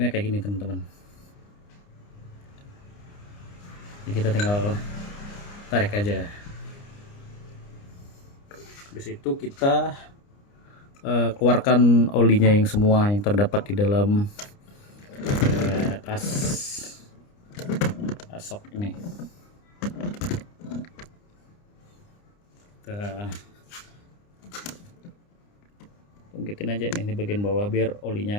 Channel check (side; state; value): right; late; 29 ms